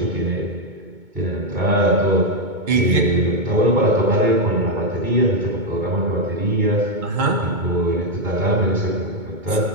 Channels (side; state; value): left; late; 2.2 ms